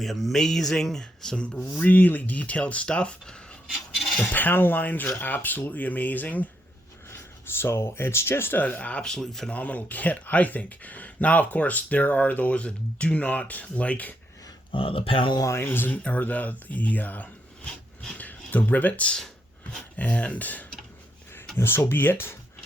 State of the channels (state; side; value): normal; both; correlation 0.78